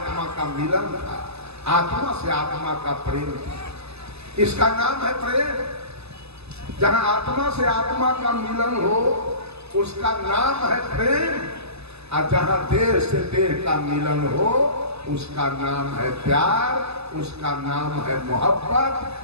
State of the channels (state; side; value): late; left; 0.79 ms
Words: का मिलन था, आत्मा से आत्मा का प्रेम था। इसका नाम है प्रेम। जहां आत्मा से आत्मा का मिलन हो उसका नाम है प्रेम, और जहां देह से देह का मिलन हो उसका नाम है प्यार, उसका नाम है मोहब्बत।